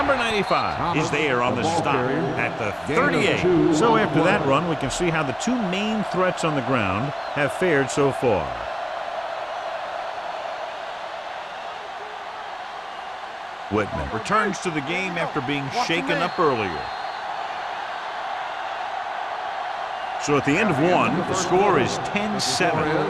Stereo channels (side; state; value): both; identical; correlation 1.00